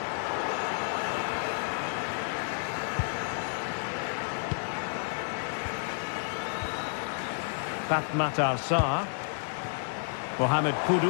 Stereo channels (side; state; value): right; silent; digital silence